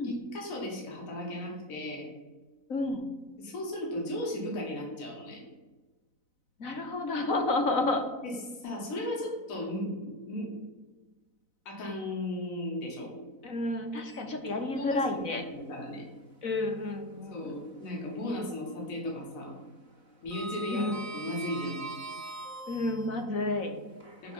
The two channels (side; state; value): right; late; 4.0 ms